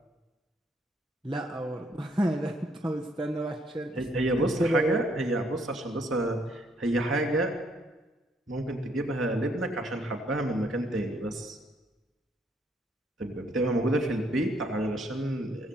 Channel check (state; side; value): normal; both; correlation 0.68